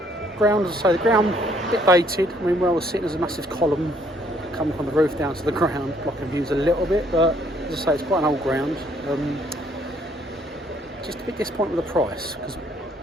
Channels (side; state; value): both; normal; correlation 0.65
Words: Ground, as I say, the ground a bit dated. I mean, where I was sitting, there's a massive column coming from the roof down to the ground, blocking views a little bit. But as I say, it's quite an old ground. Just a bit disappointed with the price because